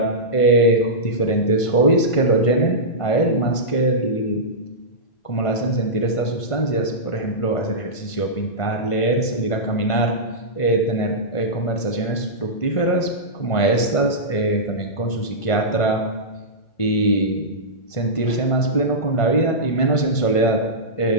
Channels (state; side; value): late; right; 1.5 ms